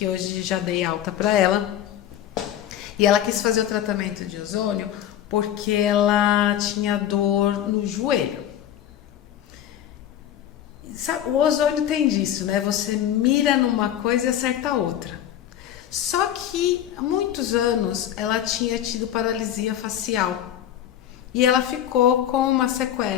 hoje já dei alta para ela, e ela quis fazer o tratamento de ozônio porque ela tinha dor no joelho. Sabe, o ozônio tem disso, né? Você mira numa coisa e acerta outra. Só que há muitos anos ela tinha tido paralisia facial e ela ficou com uma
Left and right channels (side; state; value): right; quieter; 11.0 dB